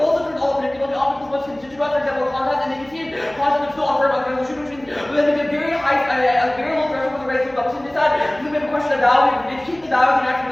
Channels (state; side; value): noise; right; hum, 26 dB below the sound